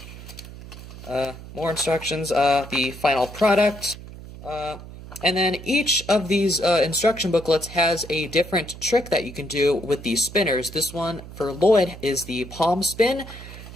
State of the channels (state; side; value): noise; right; hum, 14 dB below the sound